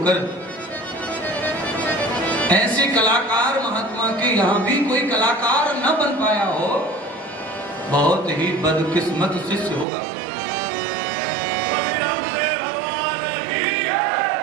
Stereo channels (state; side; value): drops out; left; at 9.9 s